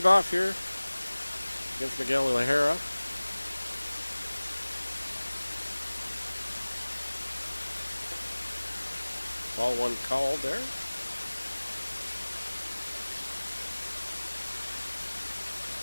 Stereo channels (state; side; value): inverted; both; correlation -1.00